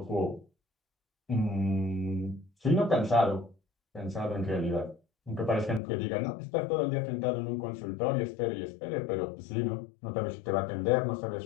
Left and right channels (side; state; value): right; drops out; at 5.8 s